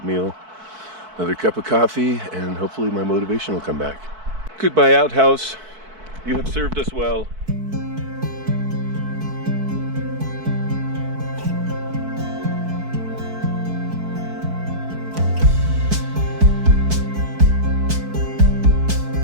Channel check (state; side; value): late; left; 4.6 ms